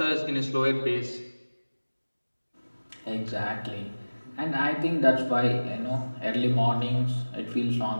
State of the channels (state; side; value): inverted; both; correlation -1.00